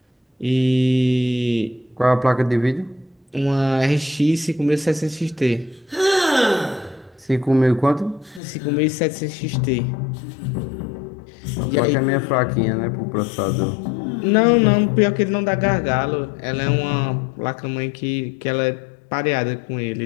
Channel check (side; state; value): right; drops out; at 8.4 s